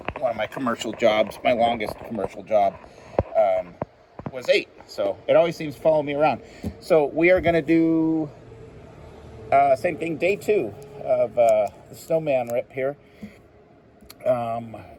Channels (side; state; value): both; identical; correlation 1.00